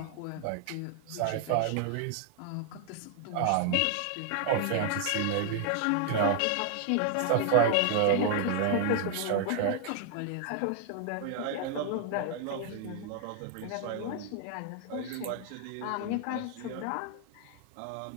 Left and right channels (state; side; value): different; both; correlation 0.00